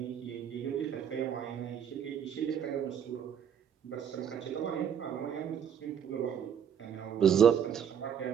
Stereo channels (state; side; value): quieter; left; 8.4 dB